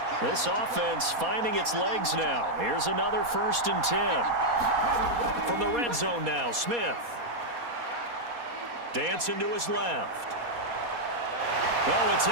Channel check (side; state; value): left; late; 4.2 ms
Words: This offense finding its legs now. Here's another 1st and 10. From the red zone now, Smith. Dancing to his left. Oh, it's